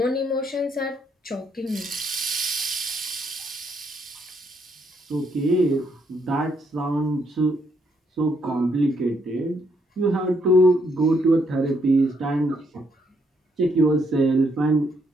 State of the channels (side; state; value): both; normal; correlation 0.73